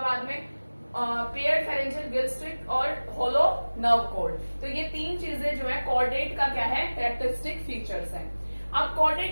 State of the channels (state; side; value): inverted; both; correlation -1.00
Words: में। पेयर्ड फेरेंजियल गिल स्लिट और होलो नर्व कॉर्ड, तो ये 3 चीजें जो है कॉर्डेट का क्या है, कैरेक्टरिस्टिक फीचर्स हैं। अब